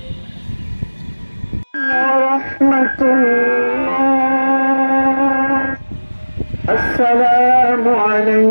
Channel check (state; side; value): inverted; both; correlation -1.00